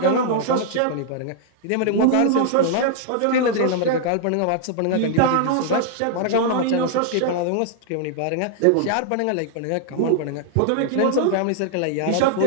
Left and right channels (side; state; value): both; different; correlation -0.01